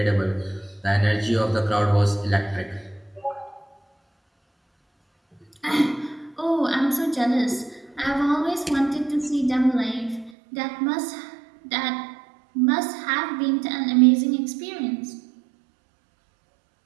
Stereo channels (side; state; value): left; drops out; at 10.3 s